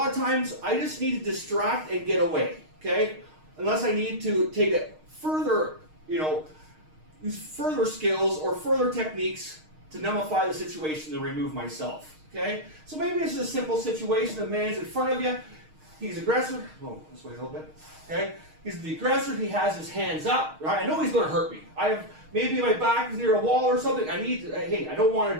of times I just need to distract and get away. Okay, unless I need to take it further, use further skills or further techniques to nullify the situation to remove myself. Okay, so maybe it's just a simple situation. The man's in front of you. He's aggressive. Oh, this way a little bit. Okay, he's the aggressor. He has his hands up. Right, I know he's going to hurt me. Maybe my back is near a wall or something. Hey, I don't want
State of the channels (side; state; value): left; late; 6.4 ms